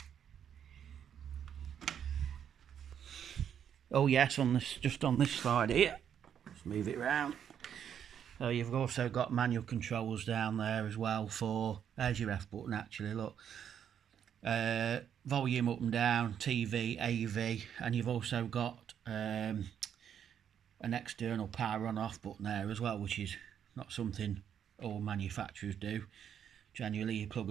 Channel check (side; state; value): left; quieter; 8.8 dB